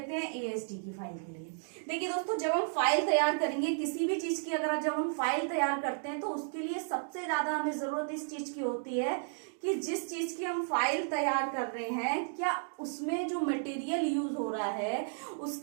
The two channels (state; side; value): silent; left; digital silence